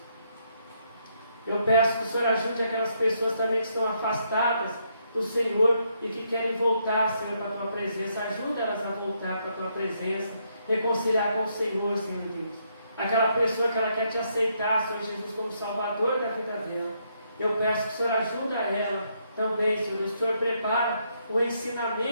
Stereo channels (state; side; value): inverted; both; correlation -0.75